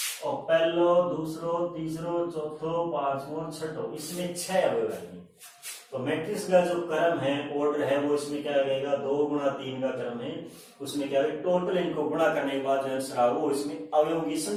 और पहलो दूसरो तीसरो चौथो पांचवो छठो, इसमें 6 अवयव है। तो मैट्रिक्स का जो क्रम है, ऑर्डर है, वो इसमें क्या लगेगा, 2 गुणा 3 का क्रम है, उसमें क्या है, टोटल इनको गुणा करने के बाद जो आंसर आएगा वो इसमें अवयवों की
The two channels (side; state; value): both; identical; correlation 1.00